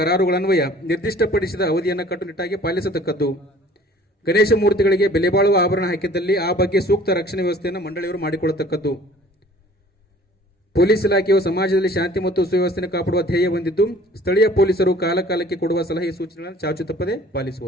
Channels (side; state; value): both; normal; correlation 0.51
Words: ನಿರ್ದಿಷ್ಟಪಡಿಸಿದ ಅವಧಿಯನ್ನು ಕಟ್ಟುನಿಟ್ಟಾಗಿ ಪಾಲಿಸತಕ್ಕದ್ದು. ಗಣೇಶ ಮೂರ್ತಿಗಳಿಗೆ ಬೆಲೆ ಬಾಳುವ ಆಭರಣ ಹಾಕಿದ್ದಲ್ಲಿ ಆ ಬಗ್ಗೆ ಸೂಕ್ತ ರಕ್ಷಣೆ ವ್ಯವಸ್ಥೆಯನ್ನು ಮಂಡಳಿಯವರು ಮಾಡಿಕೊಳ್ಳತಕ್ಕದ್ದು. ಪೊಲೀಸ್ ಇಲಾಖೆಯು ಸಮಾಜದಲ್ಲಿ ಶಾಂತಿ ಮತ್ತು ಸುವ್ಯವಸ್ಥೆ ಕಾಪಾಡುವ ಧ್ಯೇಯ ಹೊಂದಿದ್ದು ಸ್ಥಳೀಯ ಪೊಲೀಸರು ಕಾಲಕಾಲಕ್ಕೆ ಕೊಡುವ ಸಲಹೆ ಸೂಚನೆಗಳನ್ನು ಚಾಚು ತಪ್ಪದೆ